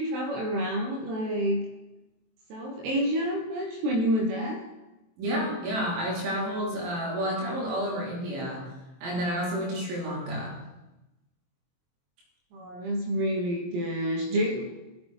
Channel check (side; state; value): left; late; 23 ms